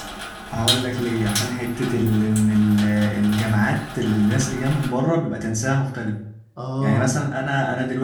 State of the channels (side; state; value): both; identical; correlation 1.00